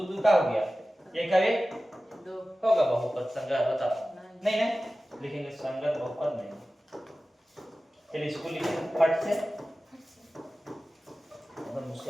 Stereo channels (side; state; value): both; normal; correlation 0.96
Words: 2 का हो गया 1 का 1 2 होगा बहुपद संगत बताओ नहीं ना लिखेंगे संगत बहुपद नहीं चलिए इसको लिखेंगे फट से और